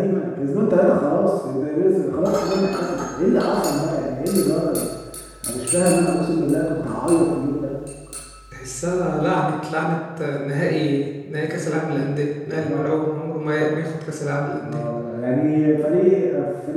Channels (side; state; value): both; identical; correlation 1.00